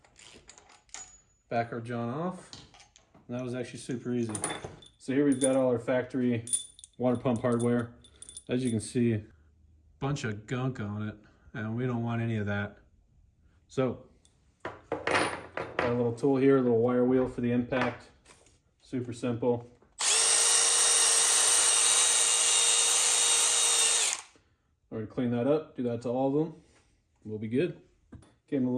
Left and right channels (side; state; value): both; identical; correlation 1.00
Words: Back our John off. And that was actually super easy. So here we've got all our factory water pump hardware. As you can see, bunch of gunk on it, and we don't want any of that. So, got a little tool here, a little wire wheel for the impact. Super simple. We're gonna clean that up, do that to all of them. We'll be good. Gave them a